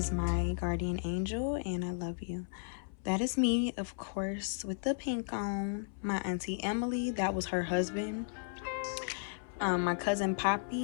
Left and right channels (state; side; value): silent; right; 55 dB below the other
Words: my guardian angel, and I love you. That is me, of course, with the pink on. My auntie Emily, that was her husband. My cousin